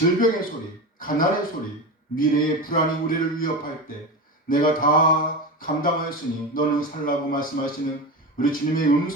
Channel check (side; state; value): both; normal; correlation 0.23